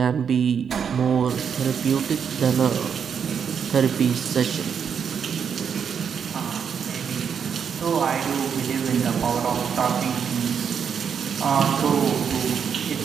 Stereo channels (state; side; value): quieter; left; 7.2 dB